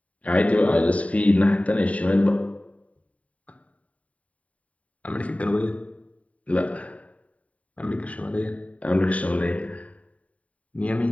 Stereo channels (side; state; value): right; late; 0.067 ms